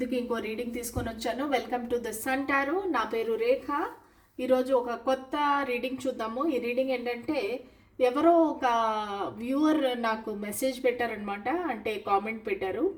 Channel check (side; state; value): both; identical; correlation 1.00